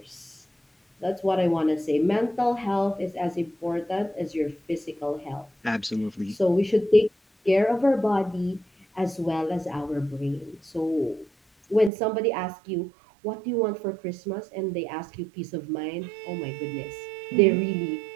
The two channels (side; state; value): left; drops out; at 11.9 s